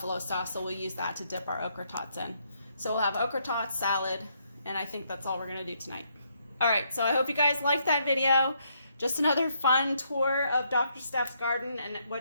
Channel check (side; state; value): both; inverted; correlation -0.74